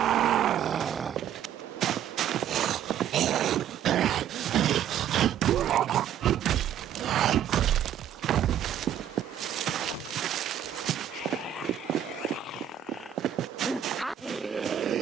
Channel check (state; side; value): quieter; left; 10.1 dB